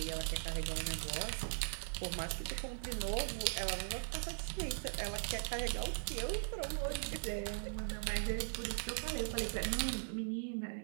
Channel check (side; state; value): left; silent; digital silence